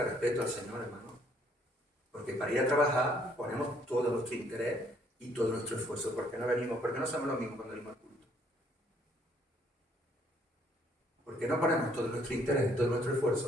respeto al Señor, hermano. Porque para ir a trabajar ponemos todo nuestro interés y todo nuestro esfuerzo. ¿Por qué no venimos? ¿Por qué no somos los mismos cuando venimos al culto? ¿Por qué no ponemos todo nuestro interés y todo nuestro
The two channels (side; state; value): both; normal; correlation 0.65